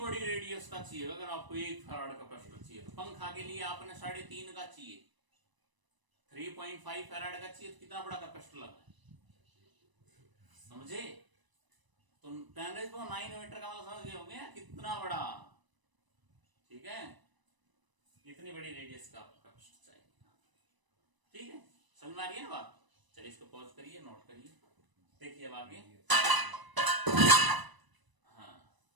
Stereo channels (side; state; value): left; late; 1.0 ms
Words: रेडियस का चाहिए अगर आपको 1 फैराड कैपेसिटर चाहिए। तो पंखा के लिए आपने 3.5 का चाहिए, 3.5 फैराड का चाहिए, तो कितना बड़ा कैपेसिटर लगा है, समझे। तो 10⁹ मीटर का मतलब समझ गए होंगे कितना बड़ा, ठीक है, इतनी बड़ी रेडियस का आपको कैपेसिटर चाहिए, ठीक है, समझ में आ रही है ना बात। चलिए इसको पॉज करिए, नोट करिए, देखिए अब आगे। हाँ,